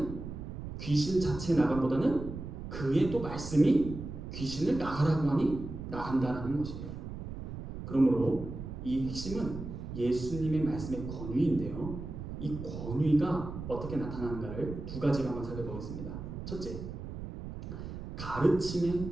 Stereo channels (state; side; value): noise; right; rumble, 8 dB below the sound